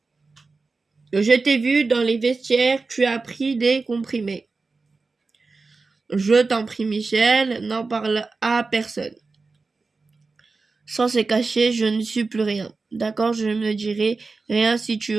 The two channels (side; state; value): left; quieter; 4.0 dB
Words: Je t'ai vu dans les vestiaires, tu as pris des comprimés. Je t'en prie, Michel, n'en parle à personne. Sans se cacher, je ne suis plus rien. D'accord, je ne dirai rien si tu